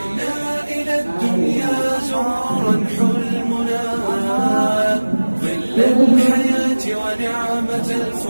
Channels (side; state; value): both; inverted; correlation -1.00